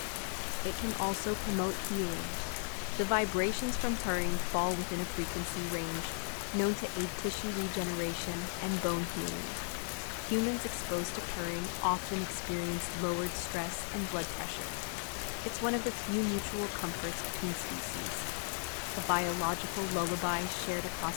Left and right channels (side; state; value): right; silent; 54 dB below the other